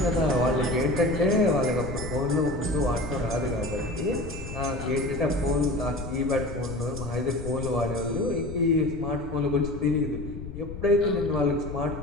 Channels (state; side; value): noise; left; rumble, 10 dB below the sound